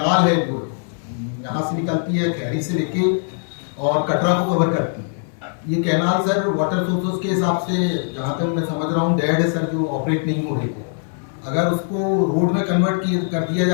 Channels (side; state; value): right; silent; 57 dB below the other